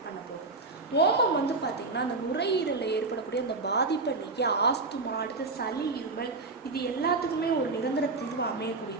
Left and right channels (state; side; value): quieter; left; 3.7 dB